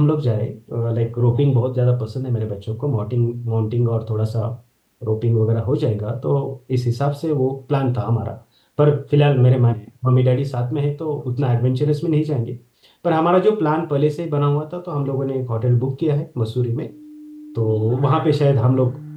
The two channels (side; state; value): both; identical; correlation 1.00